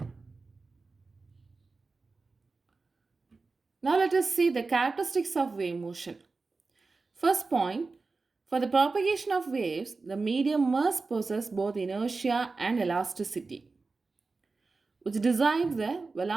Now let us see the characteristics of wave motion. First point, for the propagation of waves, the medium must possess both inertia and elasticity, which decides the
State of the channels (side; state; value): left; quieter; 4.0 dB